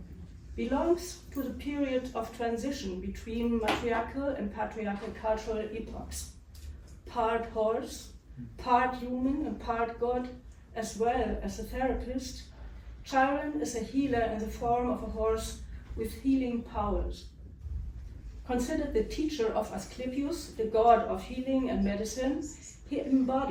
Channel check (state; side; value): identical; both; correlation 1.00